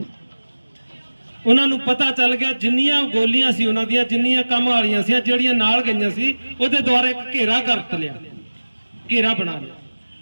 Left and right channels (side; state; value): both; inverted; correlation -1.00